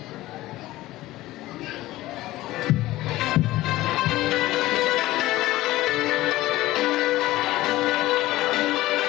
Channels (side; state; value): right; quieter; 17.0 dB